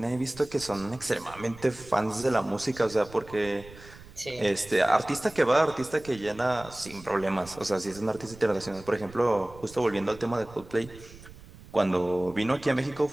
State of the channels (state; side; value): noise; right; rumble, 19 dB below the sound